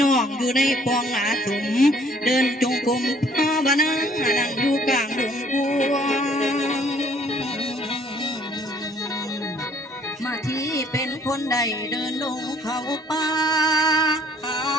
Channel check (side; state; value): both; normal; correlation 0.60